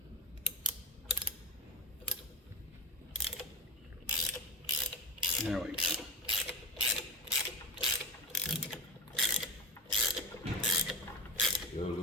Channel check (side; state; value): both; normal; correlation 0.22